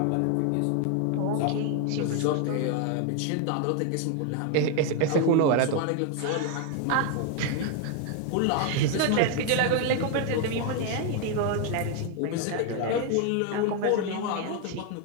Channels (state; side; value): different; both; correlation 0.01